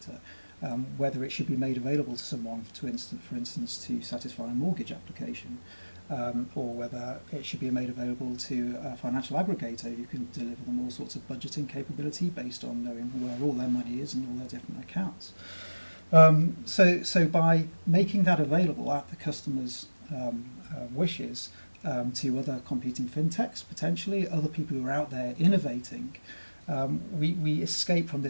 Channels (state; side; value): inverted; both; correlation -1.00